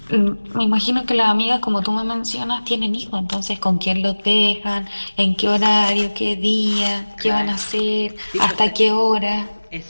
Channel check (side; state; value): both; inverted; correlation -1.00